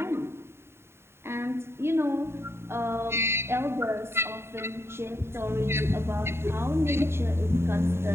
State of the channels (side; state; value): left; late; 0.12 ms